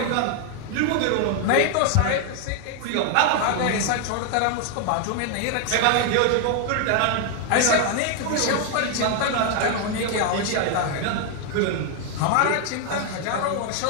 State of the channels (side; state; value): both; different; correlation 0.00